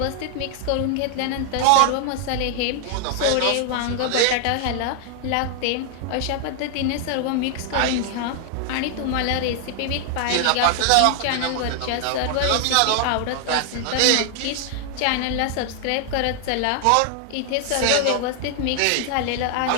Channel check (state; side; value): different; both; correlation 0.00